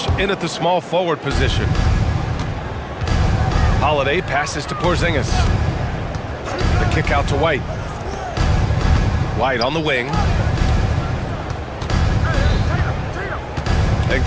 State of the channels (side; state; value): both; identical; correlation 1.00